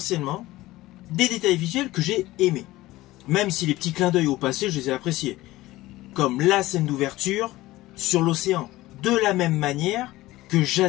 des détails visuels que j'ai aimés. Même si les petits clins d'œil au passé, je les ai appréciés. Comme la scène d'ouverture sur l'océan, de la même manière que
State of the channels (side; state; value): right; quieter; 17.7 dB